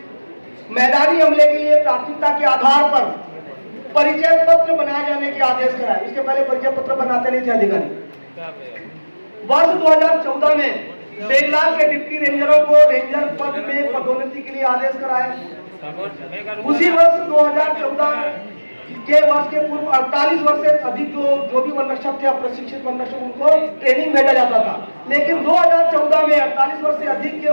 मैदानी अमले के लिए प्राथमिकता के आधार पर परिचय पत्र बनाए जाने के आदेश कराए। इसके पहले परिचय पत्र बनाते नहीं थे अधिकारी। वर्ष 2014 में बेगलाल के डिप्टी रेंजरों को रेंजर पद में पदोन्नति के लिए आदेश कराए। उसी वर्ष 2014 के वर्ष के पूर्व 48 वर्ष से अधिक जो भी वन रक्षक थे, प्रशिक्षित वन रक्षक, उनको ट्रेनिंग भेजा जाता था। लेकिन 2014 में 48 वर्ष से अधिक के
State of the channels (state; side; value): inverted; both; correlation -1.00